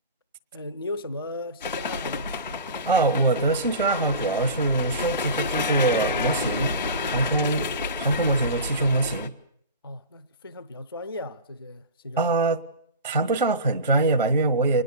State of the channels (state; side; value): inverted; both; correlation -0.33